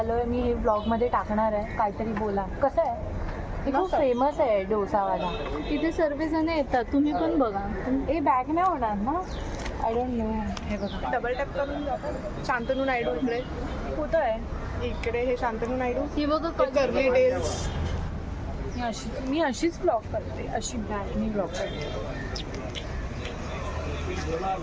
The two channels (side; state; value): both; identical; correlation 1.00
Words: मी हे ब्लॉगमध्ये टाकणार आहे. काहीतरी बोला. कसं आहे? ते खूप फेमस आहे डोसावाला. इथे सर्व जण येतात, तुम्ही पण बघा. हे बॅग नाही होणार ना? I don't know. हे बघा डबल टॅप करून जातो. शांतनू नायडू इकडे कुठं आहे? इकडे हे शांतनू नायडू. ही बघा कर्ली टेल्स. मी अशीच ब्लॉग करते. अशी बॅगनी ब्लॉग करते.